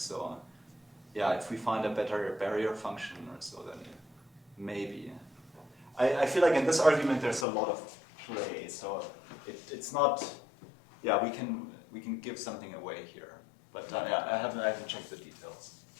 yeah, if we find a better barrier function or so, then maybe. I feel like in this argument there's a lot of play. So it's not. Yeah, we can give something away here, but yeah, I haven't checked the details.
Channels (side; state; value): right; drops out; at 7.5 s